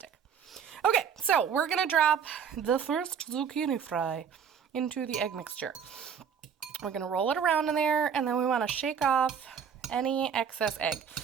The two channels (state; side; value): quieter; left; 7.4 dB